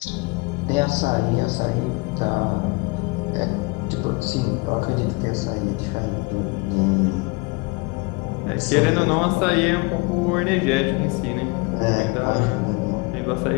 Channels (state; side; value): quieter; right; 27.5 dB